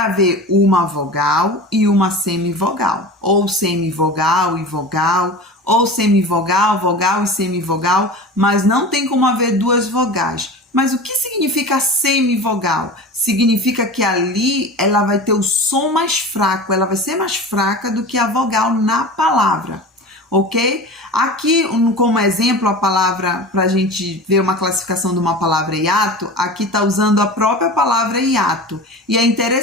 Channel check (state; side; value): normal; both; correlation 0.33